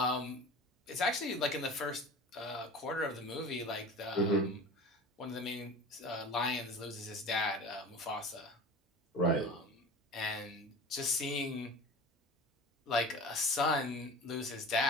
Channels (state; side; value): normal; both; correlation 0.36